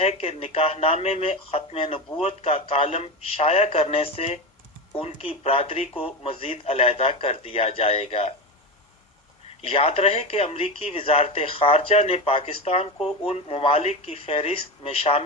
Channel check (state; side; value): normal; both; correlation 0.21